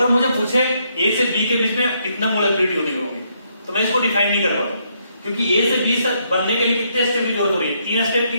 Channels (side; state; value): both; inverted; correlation -0.74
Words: मुझे पूछे ए से बी के बीच में कितना मोलिकुलरिटी होगी, तो मैं इसको डिफाइन नहीं कर पाऊंगा, क्योंकि ए से बी बनने के लिए कितने स्टेप की जरूरत हो रही है, 3 स्टेप की।